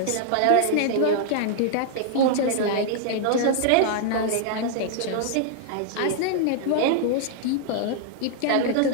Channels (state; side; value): different; both; correlation 0.00